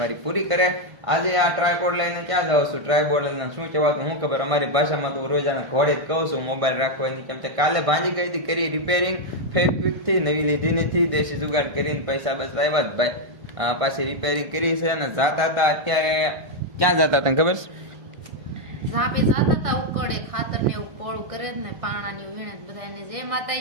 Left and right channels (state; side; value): late; left; 1.5 ms